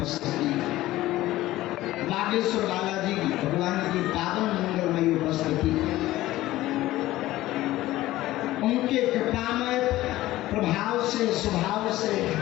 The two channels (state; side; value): quieter; right; 16.2 dB